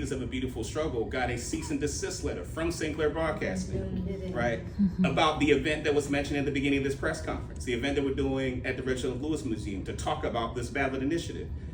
of a Beautiful Struggle, got a cease and desist letter from Sinclair Broadcasting, right, about the event that was mentioned at the beginning of this press conference, the event that we're doing at the Reginald Lewis Museum to talk about this ballot initiative.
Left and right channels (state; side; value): identical; both; correlation 1.00